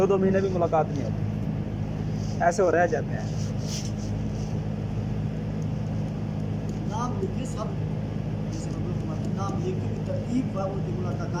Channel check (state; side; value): identical; both; correlation 1.00